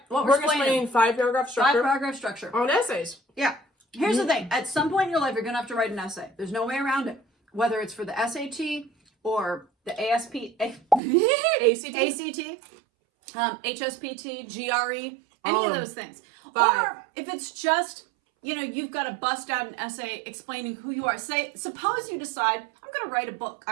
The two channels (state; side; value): drops out; left; at 11.0 s